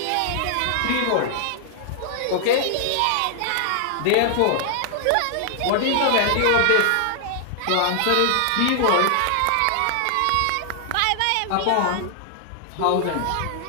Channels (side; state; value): both; different; correlation 0.00